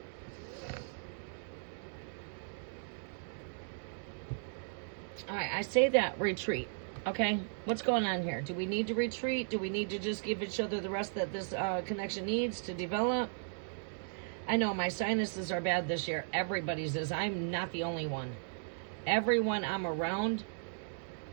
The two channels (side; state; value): left; silent; digital silence